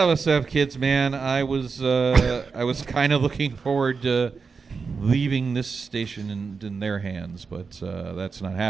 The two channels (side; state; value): left; quieter; 5.1 dB